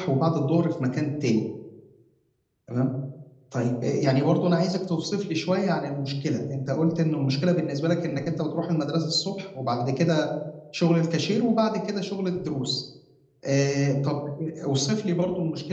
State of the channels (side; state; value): both; identical; correlation 1.00